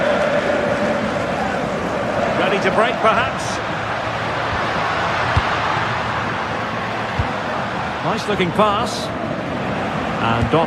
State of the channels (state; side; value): identical; both; correlation 1.00